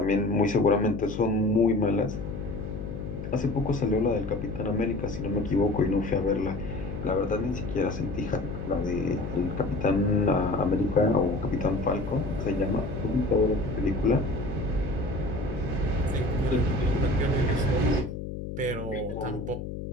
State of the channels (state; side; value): noise; left; hum, 7 dB below the sound